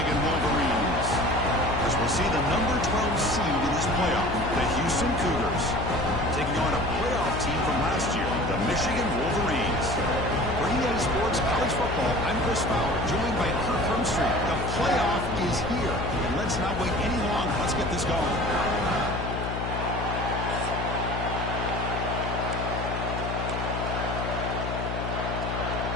Wolverines. As we'll see the number 12 seed in this playoff, the Houston Cougars, taking on a playoff team from last year, the Michigan Wolverines. For EA Sports College Football, I'm Chris Fowler, joined by Kirk Hermstreet. The playoff is here, and let's not wait any longer. Let's get this going.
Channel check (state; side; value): noise; left; hum, 4 dB below the sound